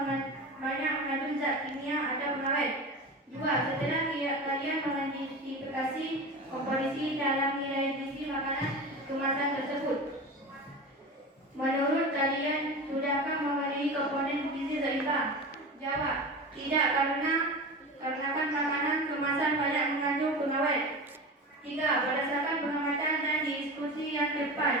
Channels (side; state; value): both; normal; correlation 0.29